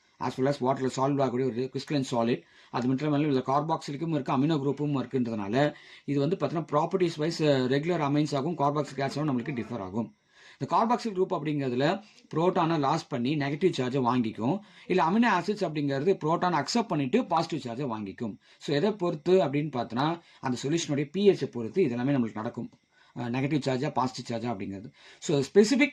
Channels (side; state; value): both; identical; correlation 1.00